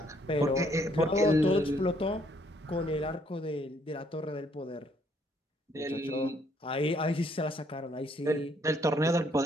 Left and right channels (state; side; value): normal; both; correlation 0.67